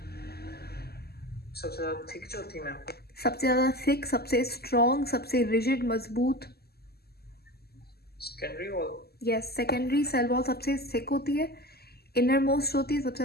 सबसे ज़्यादा थिक जो थी मैम, सबसे ज़्यादा थिक, सबसे स्ट्रॉन्ग, सबसे रिजिड मजबूत। Secondary wall. Yes, secondary cell wall सबसे थिक होती है, इनर मोस्ट होती है, सबसे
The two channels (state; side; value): late; right; 0.46 ms